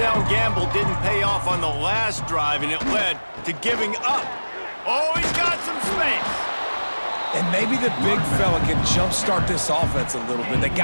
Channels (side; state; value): both; inverted; correlation -1.00